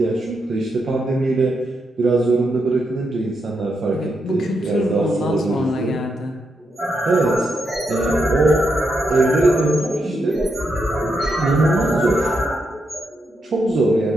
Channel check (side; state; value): both; normal; correlation 0.82